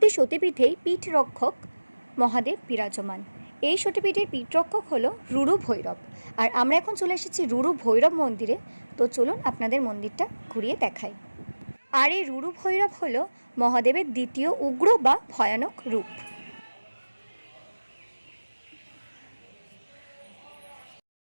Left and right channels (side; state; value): both; inverted; correlation -1.00